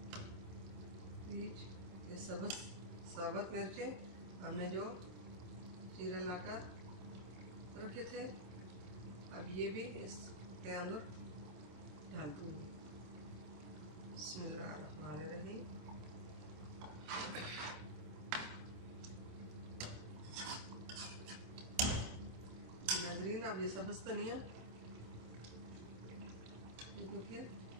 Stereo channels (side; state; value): left; late; 26 ms